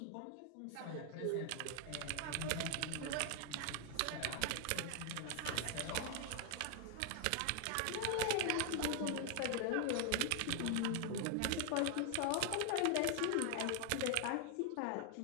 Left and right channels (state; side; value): different; both; correlation 0.00